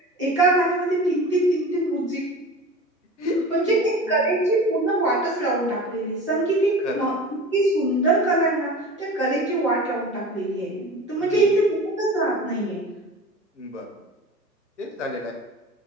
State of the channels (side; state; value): both; normal; correlation 0.36